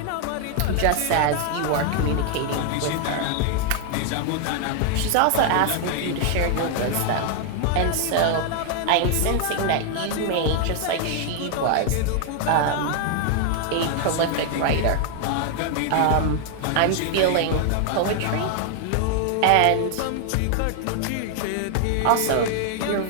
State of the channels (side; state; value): both; different; correlation 0.00